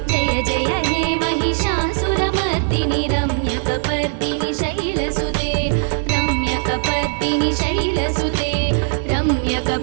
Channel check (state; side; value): silent; left; digital silence